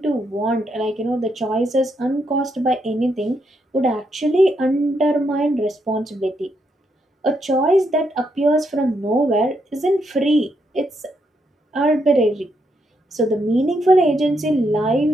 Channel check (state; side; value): normal; both; correlation 0.78